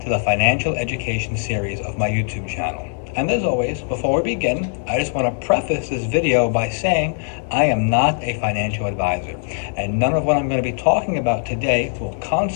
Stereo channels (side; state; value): right; silent; 65 dB below the other